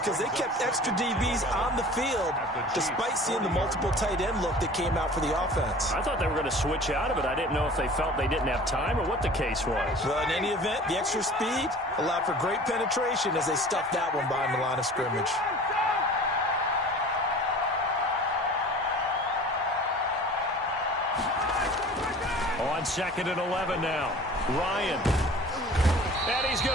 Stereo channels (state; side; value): normal; both; correlation 0.43